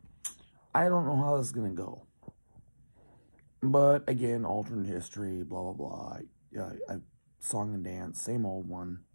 I don't know how this is going to go. But again, alternate history, blah, blah, blah. Song and dance, same old one.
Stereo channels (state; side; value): inverted; both; correlation -1.00